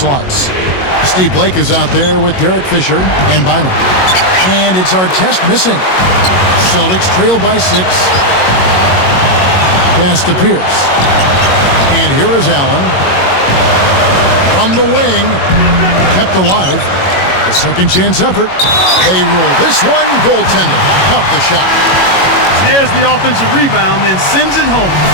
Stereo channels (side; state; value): right; late; 22 ms